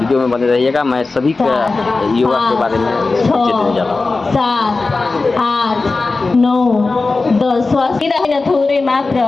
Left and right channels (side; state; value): right; quieter; 3.7 dB